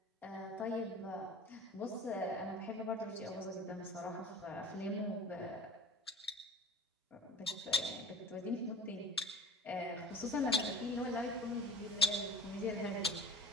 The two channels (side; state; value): both; normal; correlation 0.38